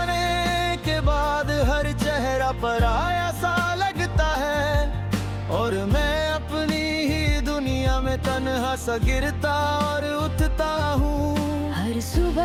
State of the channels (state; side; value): identical; both; correlation 1.00